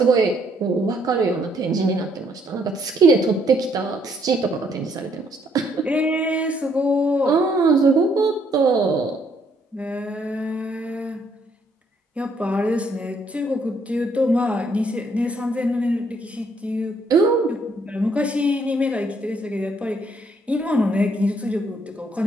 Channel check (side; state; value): both; normal; correlation 0.69